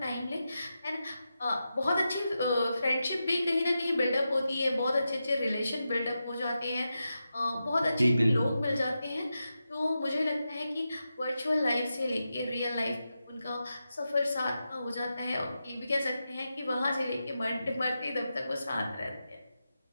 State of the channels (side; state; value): both; inverted; correlation -0.90